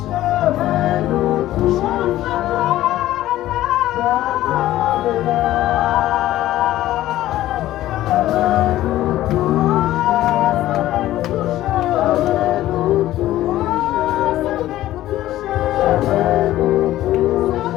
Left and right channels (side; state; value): right; quieter; 14.5 dB